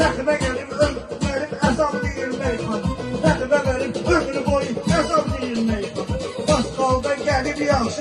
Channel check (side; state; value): both; identical; correlation 1.00